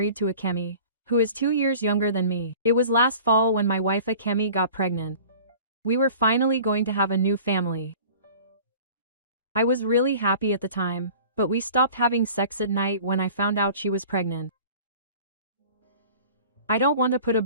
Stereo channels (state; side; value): inverted; both; correlation -0.44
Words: to Akemi, who is 2 years younger than me. It was last fall when my wife Akemi got pregnant. We were finally going to have a new family. I was really happy at the time, but we stopped having sex at night when I found out she was pregnant. I don't want to put a